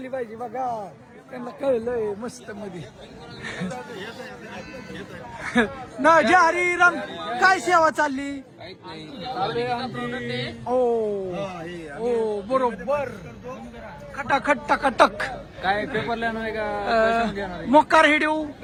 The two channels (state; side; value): identical; both; correlation 1.00